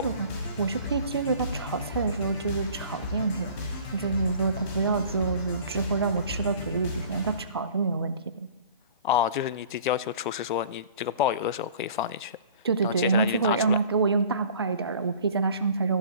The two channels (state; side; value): inverted; both; correlation -0.48